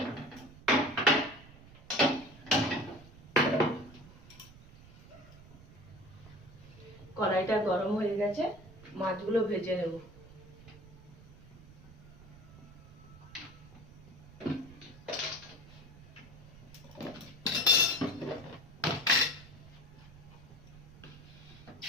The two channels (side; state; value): right; noise; rumble, 20 dB below the sound